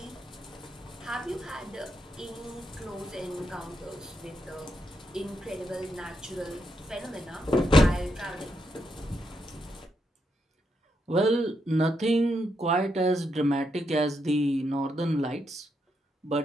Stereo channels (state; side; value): normal; both; correlation 0.81